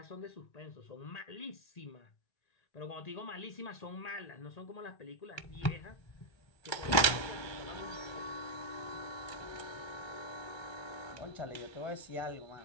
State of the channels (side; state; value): right; late; 1.3 ms